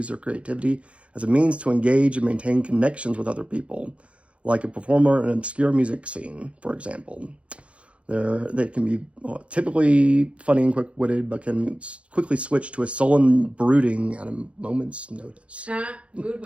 their creativity as a means to engage and maintain connections with other people, like a performer in an obscure music scene, for example. They can be typically funny and quick-witted, but can quickly switch to a sullen brooding at a moment's notice. Mood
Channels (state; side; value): late; left; 0.062 ms